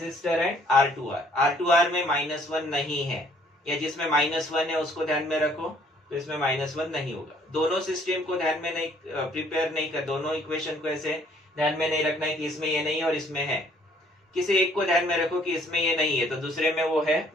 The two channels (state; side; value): normal; both; correlation 0.61